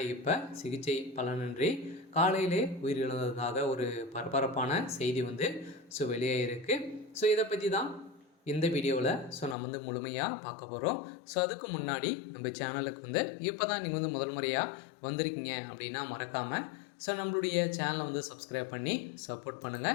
இப்போ சிகிச்சை பலனின்றி காலையிலே உயிரிழந்ததாக ஒரு பரபரப்பான செய்தி வெளியாகிருக்கு. இதை பற்றி தான் இந்த வீடியோவில் நம்ம முழுமையாக பார்க்க போகிறோம். அதுக்கு முன்னாடி நம்ம சேனலுக்கு இப்போ தான் நீங்கள் முதல் முறையாக வந்திருக்கீங்க அப்படின்னா மறக்காமல் நம்மளுடைய சேனலை சப்ஸ்கிரைப் பண்ணி சப்போர்ட்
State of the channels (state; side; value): drops out; right; at 9.6 s